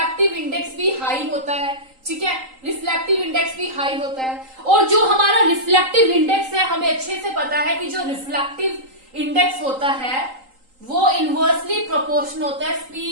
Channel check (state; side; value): late; left; 3.8 ms